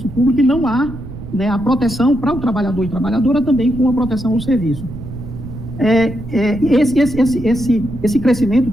público e não há, né, a proteção para o trabalhador e trabalhadora também com a proteção ao serviço. Esse crescimento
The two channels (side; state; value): right; noise; rumble, 12 dB below the sound